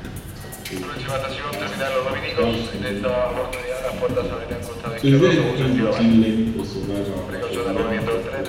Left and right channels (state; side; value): identical; both; correlation 1.00